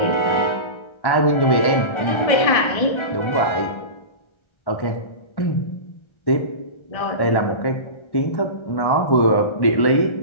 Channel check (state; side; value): late; right; 1.3 ms